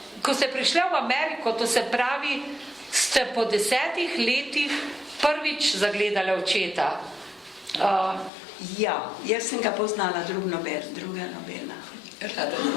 Ko ste prišli v Ameriko, to se pravi, ste po 10 letih prvič zagledali očeta. Ja, jaz sem ga poznala, druga nobena.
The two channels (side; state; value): right; drops out; at 8.3 s